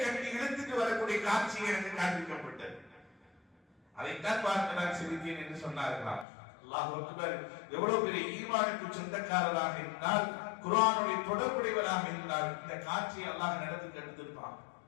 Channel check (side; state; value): right; drops out; at 6.2 s